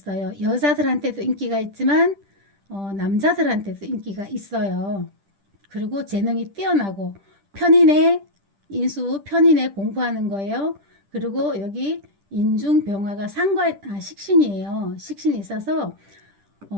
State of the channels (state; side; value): late; left; 10 ms